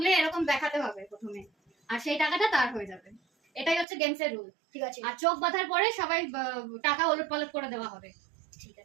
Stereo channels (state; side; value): drops out; left; at 3.9 s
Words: এরকম দেখাতে হবে প্রথমে, আর সেই টাকাটা তার হয়ে যাবে। এটাই হচ্ছে গেমসের রুল, ঠিক আছে? আর চোখ বাঁধার পরে সবাই টাকা ওলট পালট করে দেওয়া হবে, ঠিক